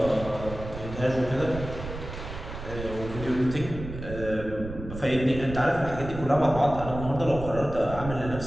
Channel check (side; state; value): right; noise; rumble, 10 dB below the sound